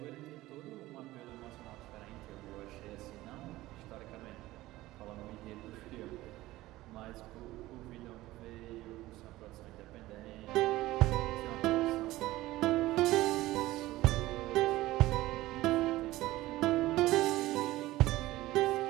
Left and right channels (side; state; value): left; quieter; 17.2 dB